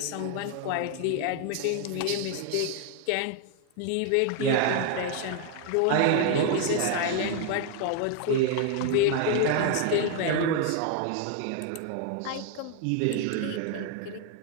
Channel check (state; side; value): different; both; correlation 0.01